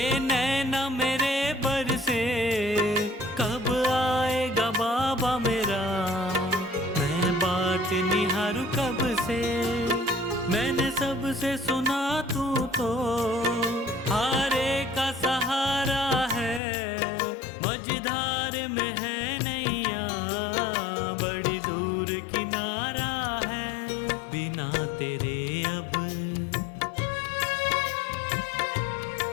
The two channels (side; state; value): right; drops out; at 16.6 s